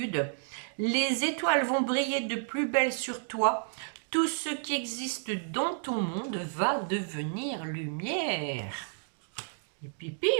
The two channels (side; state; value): left; silent; digital silence